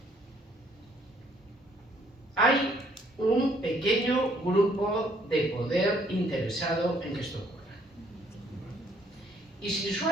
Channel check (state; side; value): normal; both; correlation 0.64